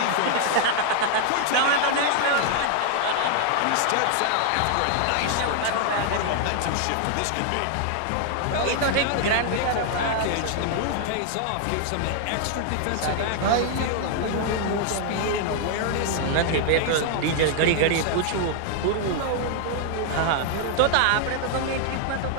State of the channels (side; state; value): both; different; correlation 0.00